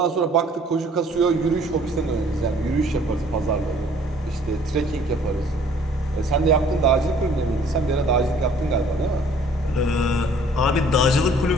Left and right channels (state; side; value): normal; both; correlation 0.56